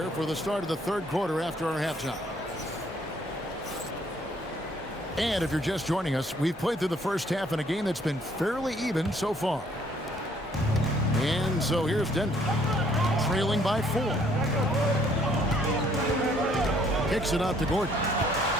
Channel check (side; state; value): both; normal; correlation 0.64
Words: for the start of the third quarter after our halftime. And if you're just joining us, we've played through the first half in a game that's been fairly even so far. And so here's Denver, trailing by 4. Kicks it out to Gordon.